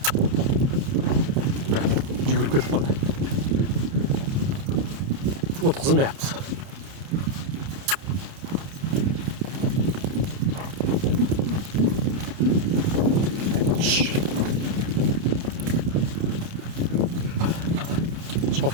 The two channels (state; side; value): late; left; 30 ms